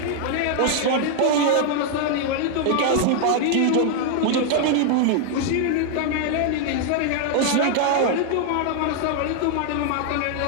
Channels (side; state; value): both; different; correlation 0.00